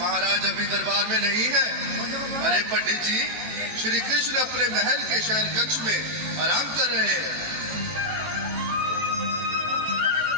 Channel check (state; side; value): late; left; 18 ms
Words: अभी दरबार में नहीं है। अरे पंडित जी, श्री कृष्ण अपने महल के शयन कक्ष में आराम कर रहे हैं।